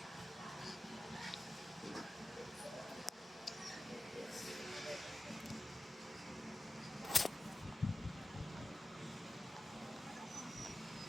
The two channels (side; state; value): both; normal; correlation 0.95